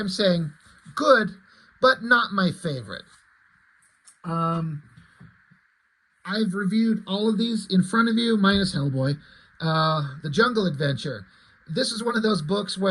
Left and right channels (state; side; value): identical; both; correlation 1.00